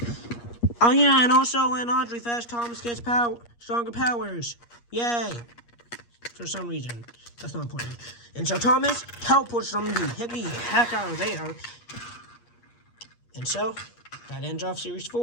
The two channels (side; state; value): right; late; 8.5 ms